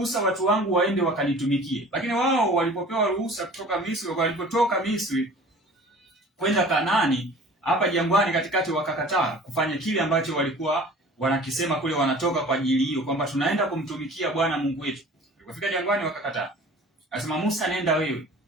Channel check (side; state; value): both; normal; correlation 0.45